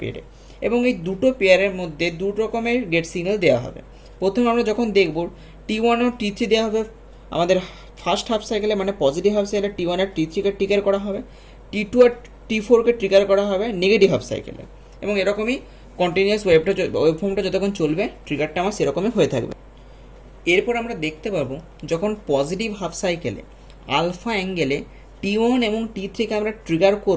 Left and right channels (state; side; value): identical; both; correlation 1.00